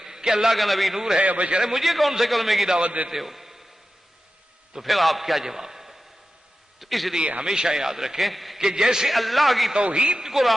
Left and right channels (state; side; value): normal; both; correlation 0.93